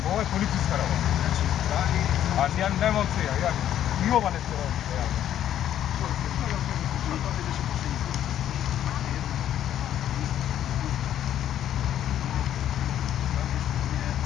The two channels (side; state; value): right; quieter; 11.0 dB